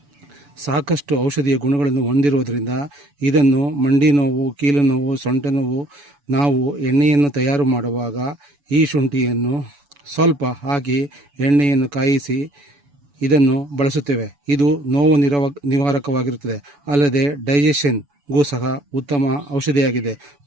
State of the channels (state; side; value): late; left; 7.0 ms